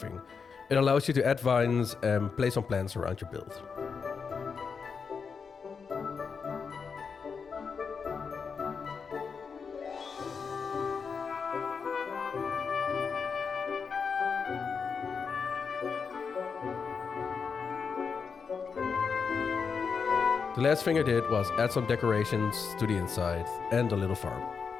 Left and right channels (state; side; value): quieter; right; 5.7 dB